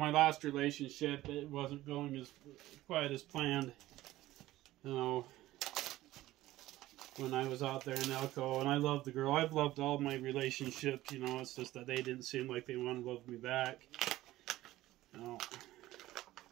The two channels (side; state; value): left; quieter; 16.1 dB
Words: last relationship, it wasn't going as quite as planned. You know, when I was out there in Elko, and I loved the girl. I've loved all my relationships, you know, it's just that they didn't seem like they wanted to love me back. You know,